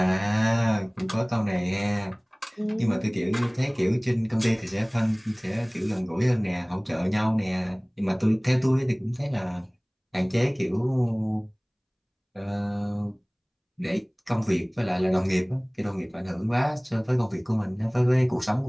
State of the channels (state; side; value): identical; both; correlation 1.00